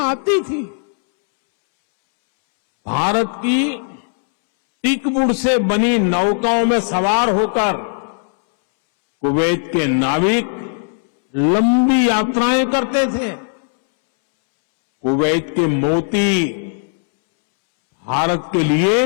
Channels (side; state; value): right; silent; 68 dB below the other